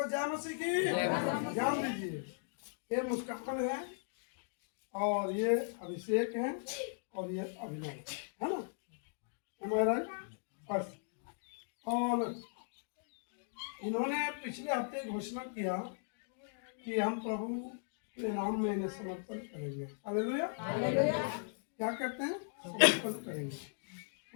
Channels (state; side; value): silent; right; digital silence